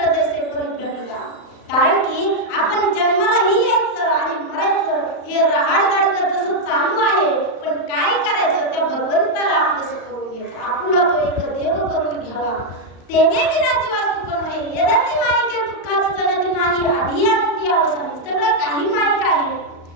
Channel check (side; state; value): right; late; 35 ms